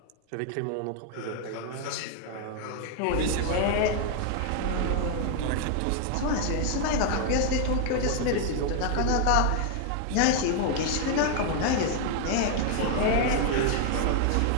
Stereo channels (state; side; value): different; both; correlation 0.00